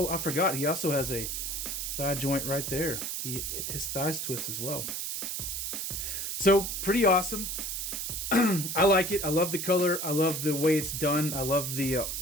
I forgot. He also has a thigh joint right there. His thighs twist as well. So pretty awesome. I like it. I love the color. I love the way it's done. I love the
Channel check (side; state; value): right; noise; hiss, 3 dB below the sound